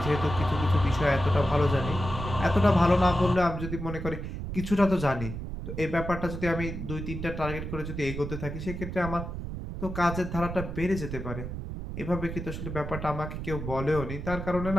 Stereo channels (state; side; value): noise; right; rumble, 6 dB below the sound